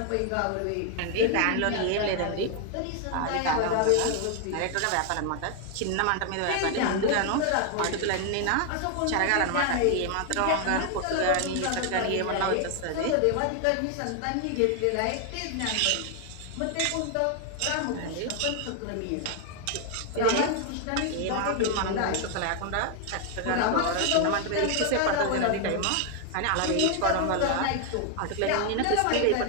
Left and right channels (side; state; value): both; different; correlation 0.00